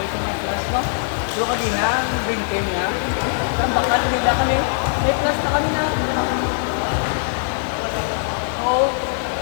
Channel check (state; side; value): silent; right; digital silence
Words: ito yung class mo. Pero kanina, ang green team niya. Ang baka tumigla kami. May class na kami na. Oo.